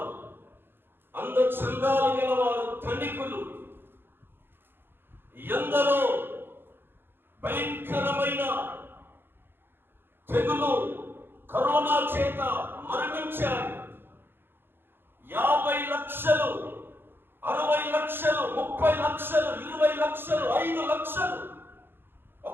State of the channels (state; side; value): late; left; 0.10 ms